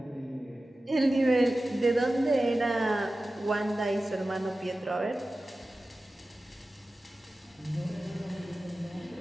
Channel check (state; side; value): normal; both; correlation 0.95